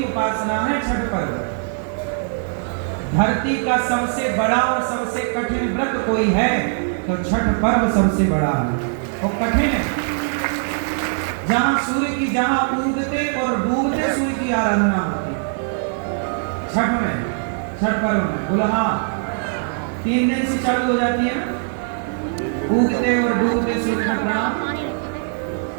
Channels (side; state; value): left; silent; 65 dB below the other